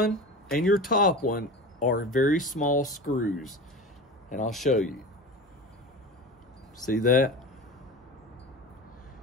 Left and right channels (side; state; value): both; normal; correlation 0.31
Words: and your top one are very small screws. And I'll show you. See that?